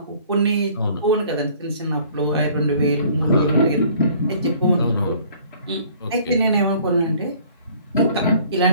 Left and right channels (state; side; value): inverted; both; correlation -0.55